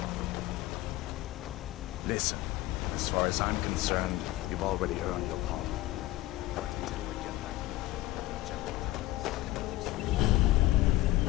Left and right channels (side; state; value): right; quieter; 17.3 dB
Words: Listen, as far as I'm concerned, you've already earned your palm. But until we get that confirmed, the General